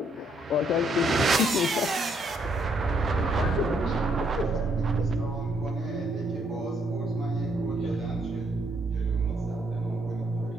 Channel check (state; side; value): normal; both; correlation 0.72